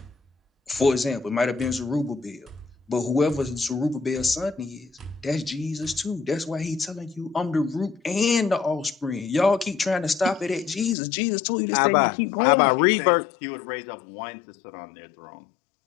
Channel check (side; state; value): right; drops out; at 11.0 s